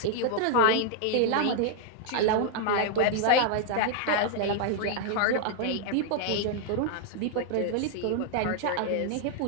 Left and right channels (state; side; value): different; both; correlation 0.00